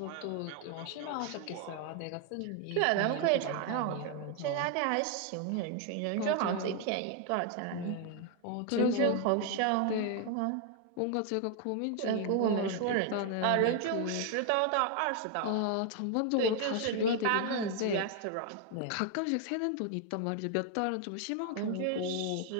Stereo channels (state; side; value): different; both; correlation 0.00